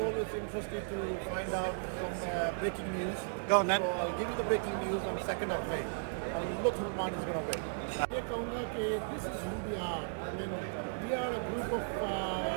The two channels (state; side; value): silent; left; digital silence